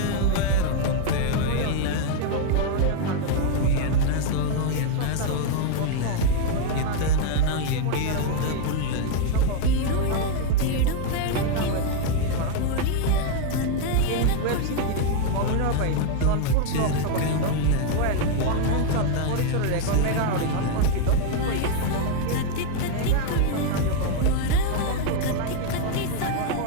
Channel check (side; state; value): both; different; correlation 0.00